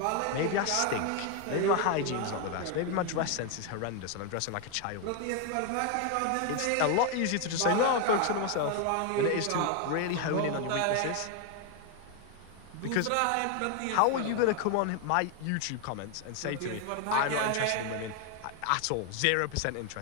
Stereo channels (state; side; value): different; both; correlation 0.01